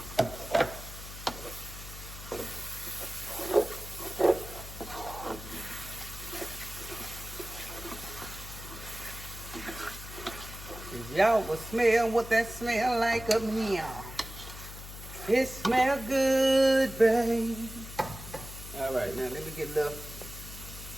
Y'all will smell what that smell like up in here. It smell good, babe. All right, now let me get a little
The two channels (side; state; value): left; noise; hum, 12 dB below the sound